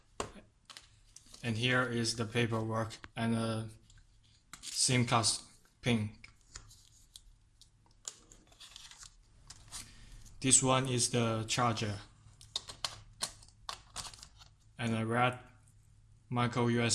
And here is the paperwork and a SIM card pin. This one is the charger and a red micro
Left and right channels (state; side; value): identical; both; correlation 1.00